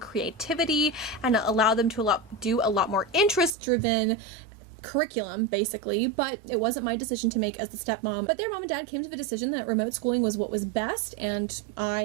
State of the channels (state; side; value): drops out; left; at 3.6 s